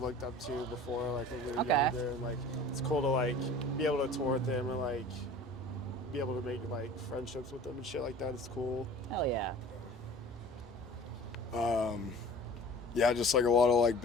looked up to before, like when we were Okay. younger. And like, it's cool to like be able to tour with them and like be able to make like friendships with them and shit like that. It's cool. Hell yeah. Yeah, just like a lot of like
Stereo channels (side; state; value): both; normal; correlation 0.43